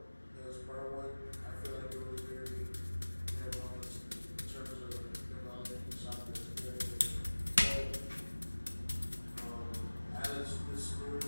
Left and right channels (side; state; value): both; inverted; correlation -1.00